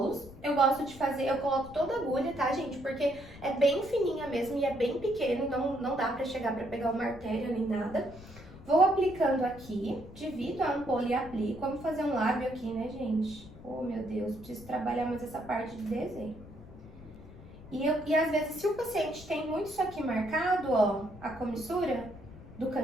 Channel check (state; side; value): noise; left; rumble, 17 dB below the sound